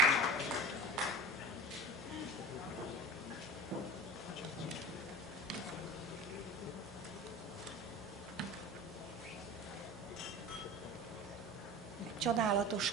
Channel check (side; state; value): both; normal; correlation 0.36